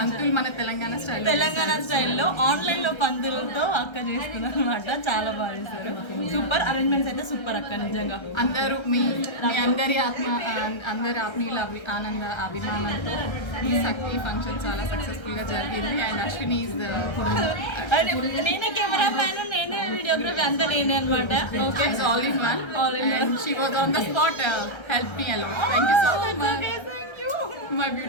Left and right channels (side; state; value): right; late; 1.3 ms